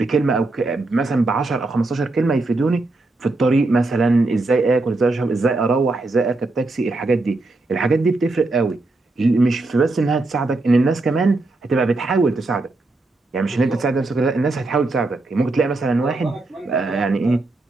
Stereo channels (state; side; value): quieter; left; 3.1 dB